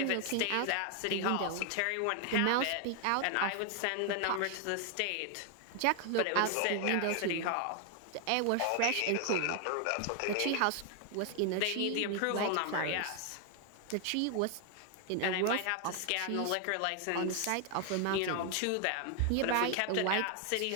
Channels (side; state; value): both; different; correlation 0.00